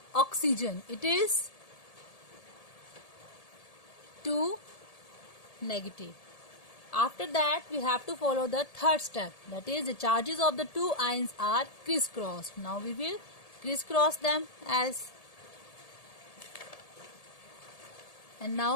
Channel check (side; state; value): right; late; 1.7 ms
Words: oxygen it is 2 negative. After that, we have to follow the third step, that is the charges of the two ions are crisscrossed. Now we will crisscross them as, and